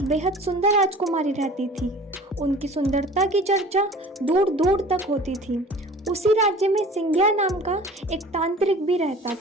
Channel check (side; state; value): both; normal; correlation 0.43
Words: बेहद सुंदर राजकुमारी रहती थी। उनकी सुंदरता की चर्चा दूर दूर तक होती थी। उसी राज्य में सिंघिया नाम का एक तांत्रिक भी रहता